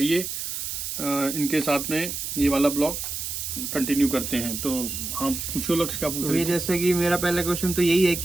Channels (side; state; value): right; noise; hiss, 5 dB below the sound